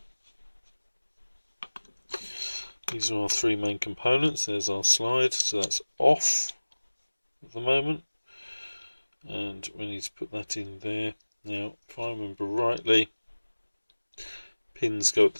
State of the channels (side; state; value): both; inverted; correlation -1.00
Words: These are our three main components. There's our slide, so that's off at the moment. And we need to put that in there. Now, if I remember rightly, pins go at